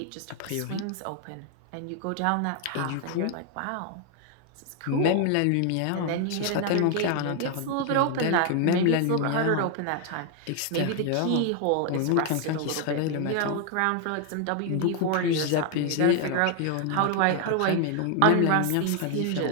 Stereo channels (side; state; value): both; different; correlation 0.00